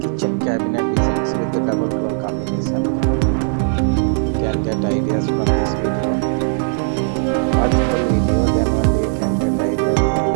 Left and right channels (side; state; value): left; silent; digital silence